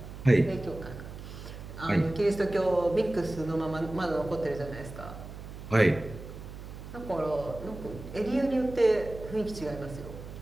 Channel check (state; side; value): noise; right; hum, 12 dB below the sound